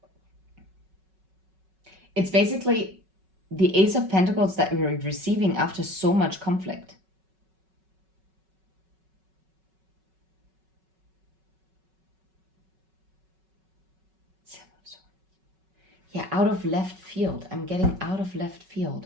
basically the Ace of Pentacles that we're receiving after so much conflict. Seven of Swords. Yeah, out of left field. I'm getting out of left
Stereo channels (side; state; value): left; late; 5.3 ms